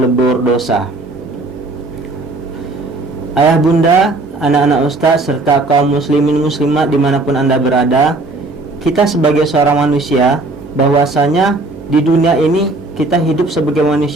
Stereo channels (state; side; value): quieter; left; 3.2 dB